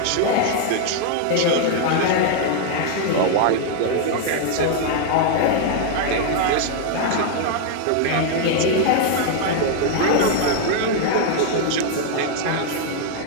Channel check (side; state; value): both; different; correlation 0.00